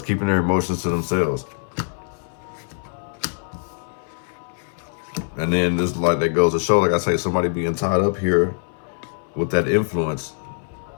keeping their emotions to themselves. And then this, like, that goes to show, like I say, somebody being tied up here with that influence.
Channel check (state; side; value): silent; right; 60 dB below the other